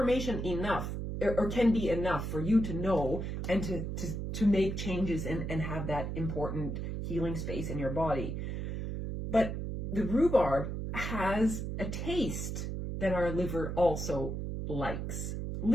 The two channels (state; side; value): noise; right; hum, 4 dB below the sound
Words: enough, or can be enough for you to know and to make changes and have that important healing space in your body. But the rhubarb has a taste that our liver also likes.